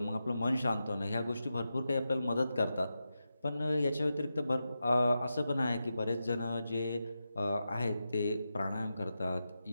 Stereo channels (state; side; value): inverted; both; correlation -0.90